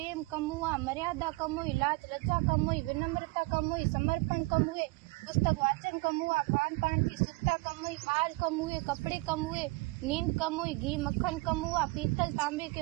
कम हुआ, मर्यादा कम हुई, लाज लज्जा कम हुई, विनम्रता कम हुई, समर्पण कम हुए, पुस्तक वाचन कम हुआ, खान पान की शुद्धता कम हुई, बाल कम हुए, कपड़े कम हुए, नींद कम हुई, घी मक्खन कम हुआ, पीतल तांबे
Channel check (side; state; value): left; quieter; 24.3 dB